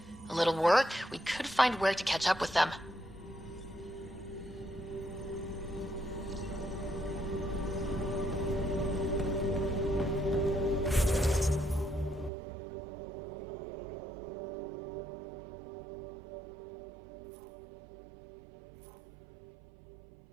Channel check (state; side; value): drops out; left; at 12.3 s